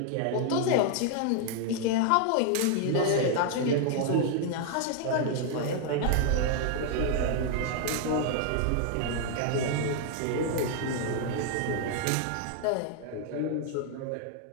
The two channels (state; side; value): different; both; correlation 0.00